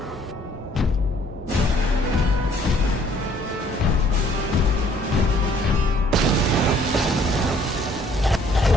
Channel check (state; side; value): normal; both; correlation 0.60